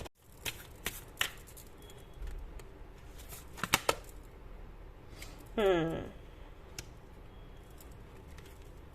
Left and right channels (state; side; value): identical; both; correlation 1.00